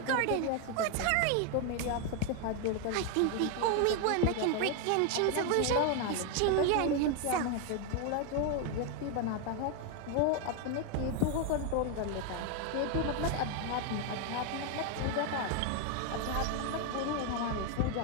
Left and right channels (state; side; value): different; both; correlation 0.01